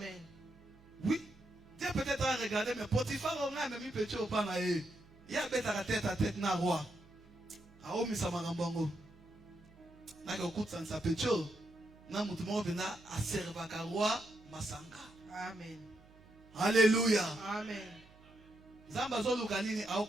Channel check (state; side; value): noise; right; hum, 24 dB below the sound